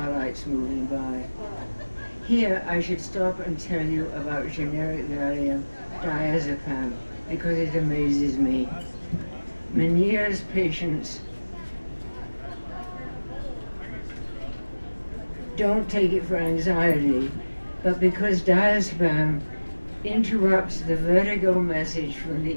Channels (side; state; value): both; inverted; correlation -1.00